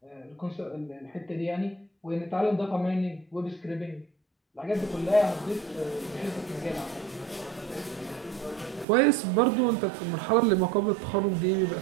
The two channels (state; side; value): drops out; left; at 8.8 s